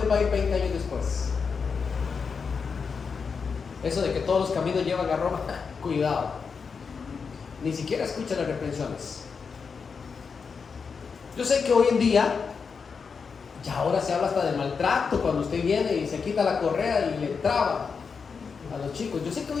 va a ir 20 años después. Eso de que todos los caminos llevan a Roma, cuidado. Ni siquiera escuchan las reprensiones. Yo sé que hoy en día, ya ahora se habla hasta de maltrato cuando usted viene y se quita la correa y le traba a los chicos. Yo sé que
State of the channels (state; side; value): quieter; right; 5.6 dB